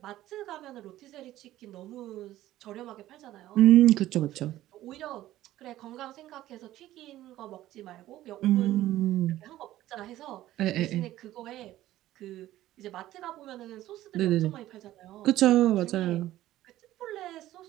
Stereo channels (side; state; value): left; quieter; 14.6 dB